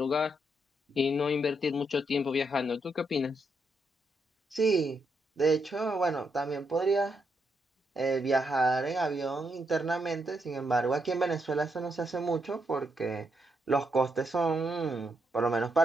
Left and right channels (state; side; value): normal; both; correlation 0.79